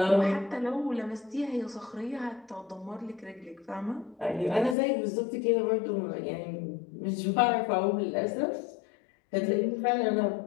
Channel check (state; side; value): drops out; right; at 4.8 s